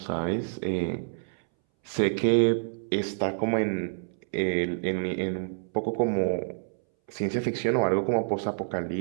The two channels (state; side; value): silent; left; 59 dB below the other